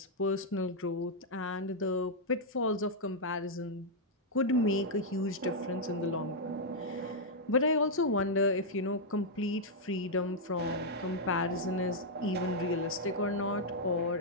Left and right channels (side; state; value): both; normal; correlation -0.04